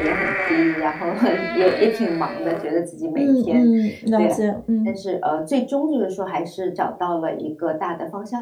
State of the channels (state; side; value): identical; both; correlation 1.00